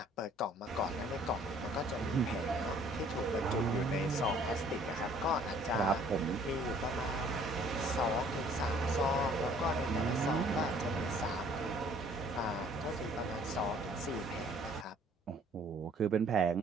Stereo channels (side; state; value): both; normal; correlation 0.57